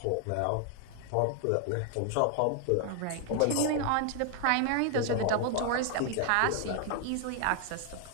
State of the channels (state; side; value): different; both; correlation 0.00